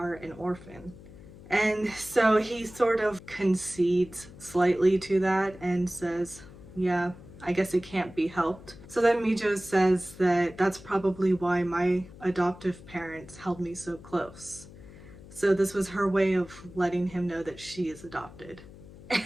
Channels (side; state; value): left; noise; hum, 18 dB below the sound